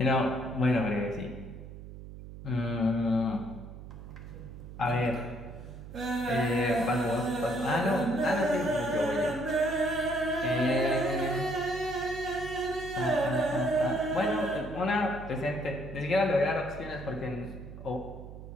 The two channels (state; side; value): noise; right; hum, 13 dB below the sound